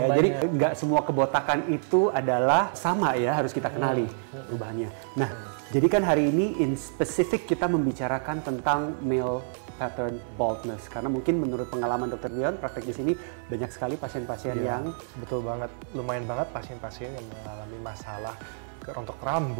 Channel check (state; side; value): silent; left; 60 dB below the other